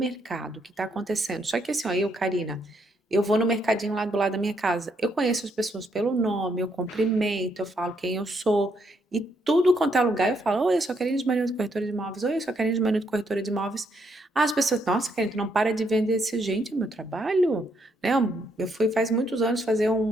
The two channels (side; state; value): both; normal; correlation 0.75